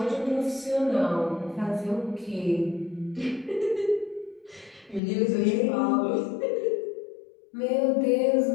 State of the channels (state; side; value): drops out; right; at 5.0 s